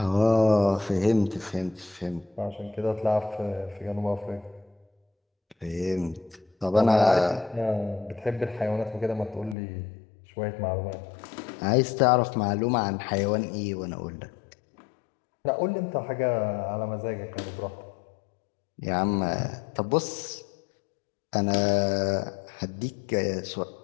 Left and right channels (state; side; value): drops out; right; at 9.6 s